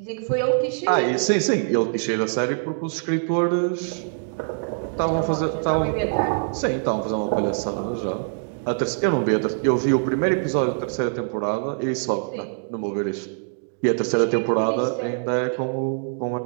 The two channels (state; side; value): silent; left; digital silence